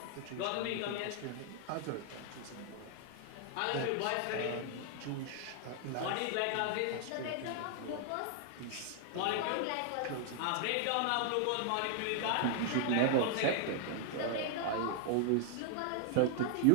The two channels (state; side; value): different; both; correlation 0.00